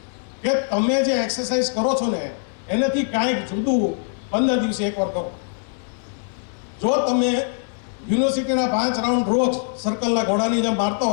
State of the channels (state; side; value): silent; right; digital silence